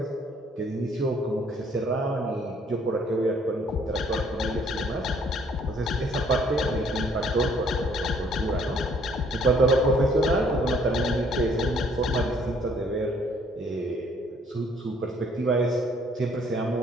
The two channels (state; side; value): normal; both; correlation 0.62